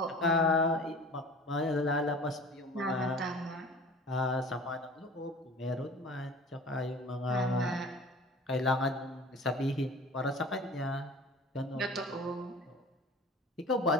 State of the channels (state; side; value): normal; both; correlation 0.42